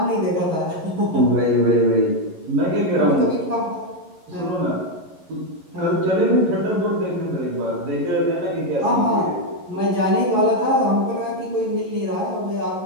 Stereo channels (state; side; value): late; left; 11 ms